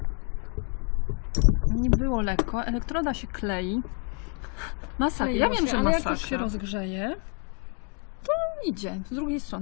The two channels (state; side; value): quieter; right; 39.9 dB